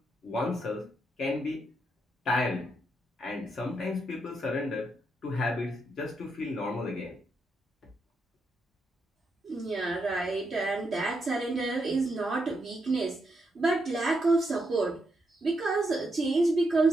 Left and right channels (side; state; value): both; normal; correlation 0.81